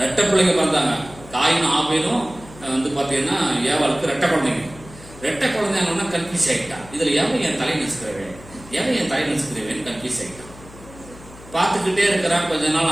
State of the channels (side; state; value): left; noise; hum, 19 dB below the sound